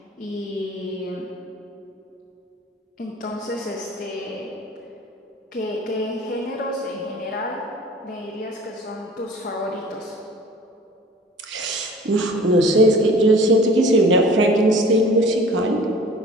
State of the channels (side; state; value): both; normal; correlation 0.46